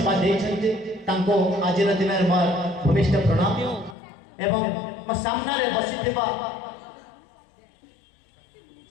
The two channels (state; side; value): drops out; right; at 4.0 s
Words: देइछन्ति तांको आजिर दिन मोर भूमिष्ठ प्रणाम एवं मो सामने बसिथिबा